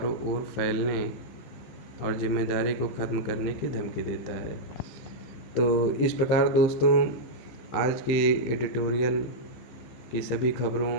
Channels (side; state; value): right; late; 15 ms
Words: ओर फैलने और जिम्मेदारी को ख़त्म करने की धमकी देता है। तो इस प्रकार दोस्तों, आज की एडिटोरियल की सभी खबरों